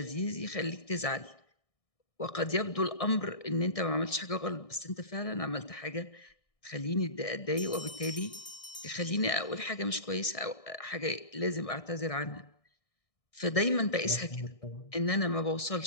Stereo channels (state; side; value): late; right; 1.6 ms